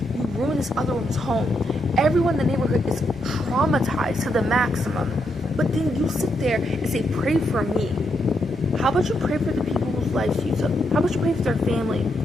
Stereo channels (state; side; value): normal; both; correlation 0.80